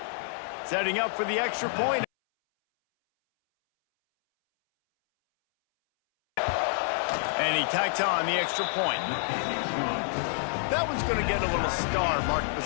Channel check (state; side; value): silent; right; 59 dB below the other